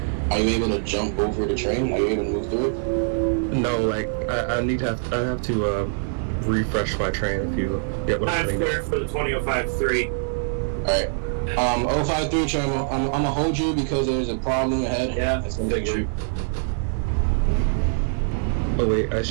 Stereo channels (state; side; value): silent; left; digital silence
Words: you able to jump over the train? Are you able to move through it? No, like I have to refresh my train if you get what I'm saying. Clear for the 20053. Alright. 053 train, I'm gonna hold you because there's a problem ahead. Yeah, it's gonna take you. Oh wait, I